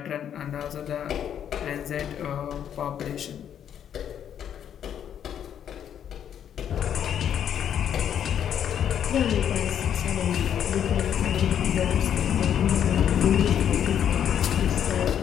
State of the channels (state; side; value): quieter; right; 9.3 dB